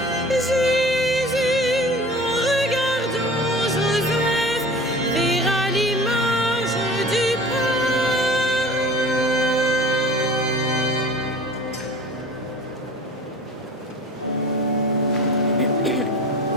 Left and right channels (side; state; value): both; normal; correlation 0.41